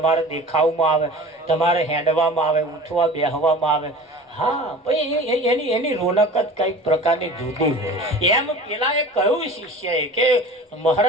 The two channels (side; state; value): both; normal; correlation 0.39